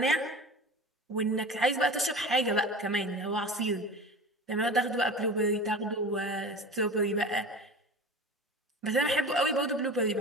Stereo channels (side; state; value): both; normal; correlation 0.34